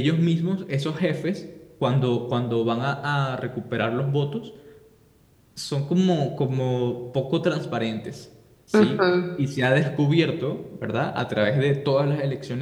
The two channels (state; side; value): identical; both; correlation 1.00